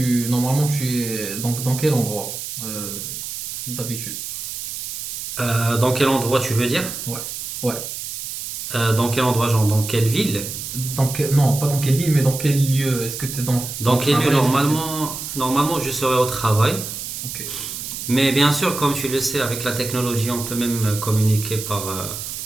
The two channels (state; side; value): noise; right; hiss, 7 dB below the sound